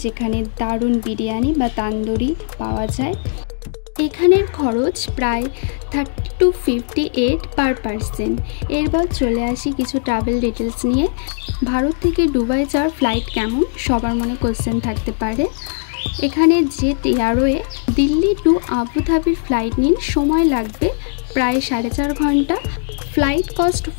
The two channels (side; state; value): right; silent; digital silence